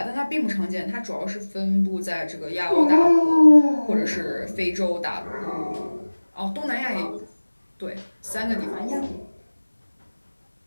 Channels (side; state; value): both; inverted; correlation -1.00